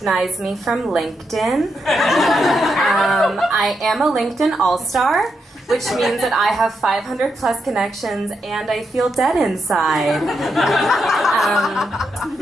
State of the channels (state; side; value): normal; both; correlation 0.83